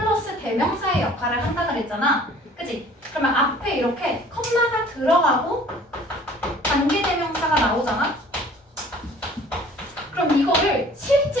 대명사의 역할을 한다 그랬잖아. 그치? 그러면 앞에 이렇게 컴마가 들어가고 관계대명사가 나오잖아. 그럼 이거를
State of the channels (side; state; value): both; normal; correlation 0.51